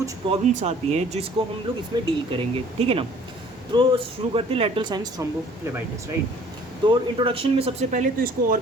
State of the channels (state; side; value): normal; both; correlation 0.54